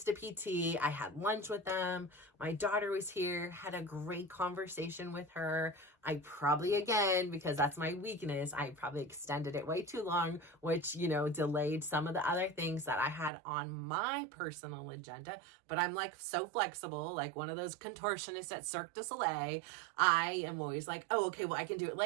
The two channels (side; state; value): left; drops out; at 13.3 s